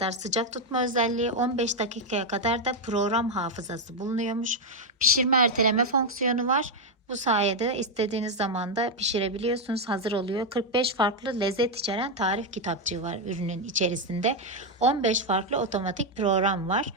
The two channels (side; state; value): both; normal; correlation 0.03